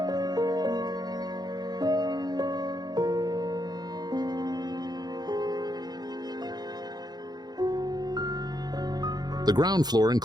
The ground floor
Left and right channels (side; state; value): left; late; 0.20 ms